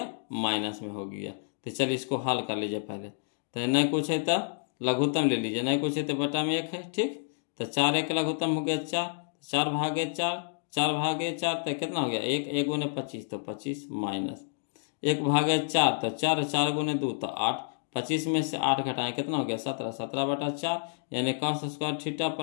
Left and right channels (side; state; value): right; silent; digital silence